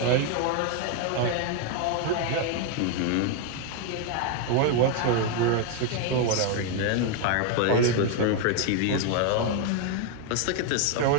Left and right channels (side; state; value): both; different; correlation 0.00